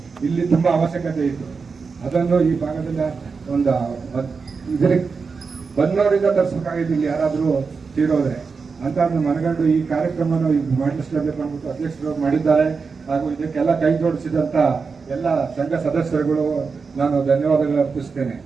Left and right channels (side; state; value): left; quieter; 5.0 dB